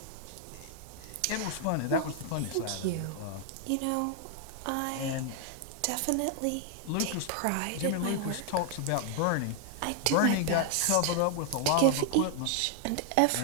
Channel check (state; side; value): different; both; correlation 0.00